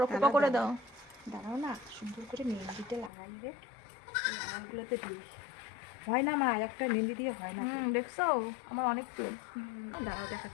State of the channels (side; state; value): right; drops out; at 3.1 s